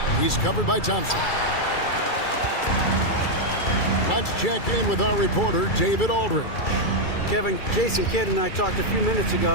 He's covered by Thompson. Let's check in with our reporter, David Aldridge. Kevin, Jason Kidd and I talked a few minutes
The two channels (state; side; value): late; right; 2.3 ms